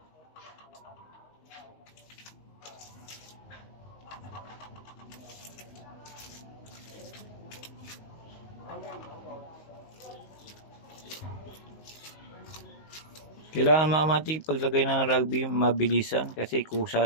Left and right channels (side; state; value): right; late; 19 ms